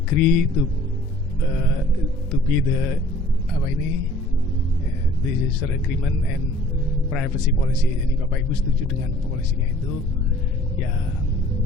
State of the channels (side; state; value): both; normal; correlation 0.53